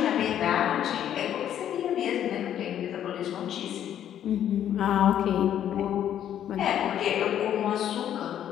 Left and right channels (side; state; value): right; quieter; 10.4 dB